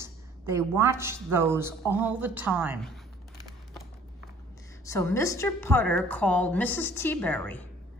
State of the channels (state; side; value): normal; both; correlation 0.54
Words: They watched those all the time. So Mr. Putter called Mrs. Teaberry.